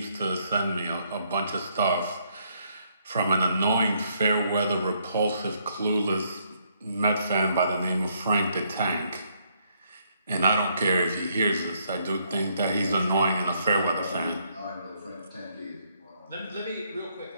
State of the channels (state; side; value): inverted; both; correlation -0.71